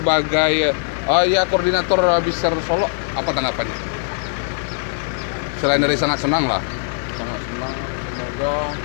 ya koordinator Biser Solo, apa tanggapannya? Selain dari sangat senang lah. Sangat senang, semoga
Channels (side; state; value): right; silent; digital silence